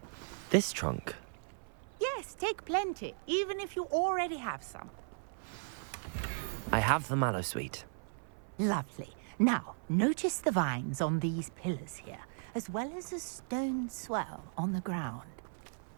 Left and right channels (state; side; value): silent; left; 54 dB below the other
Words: This trunk? Yes, take plenty, even if you already have some. I have the mallow sweet. Lovely. Now, notice the vines on these pillars here, as well as a stone swell on the ground.